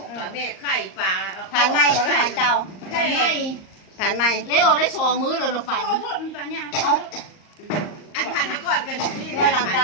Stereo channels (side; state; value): right; late; 38 ms